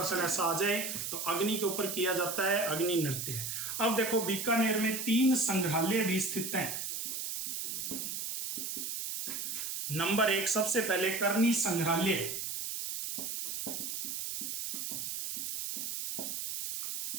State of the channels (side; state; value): right; noise; hiss, 4 dB below the sound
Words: ऐसा आ जाए तो अग्नि के ऊपर किया जाता है, अग्नि नृत्य। अब देखो, बीकानेर में 3 संग्रहालय भी स्थित हैं। नंबर 1, सबसे पहले करनी संग्रहालय।